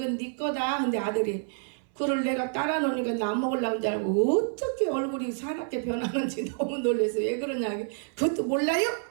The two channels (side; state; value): left; silent; 59 dB below the other